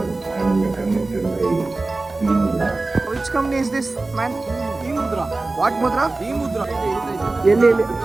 Which company is this, man? E-Mudra. What Mudra? E-Mudra. ಎಲ್ಲಿ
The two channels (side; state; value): left; quieter; 3.3 dB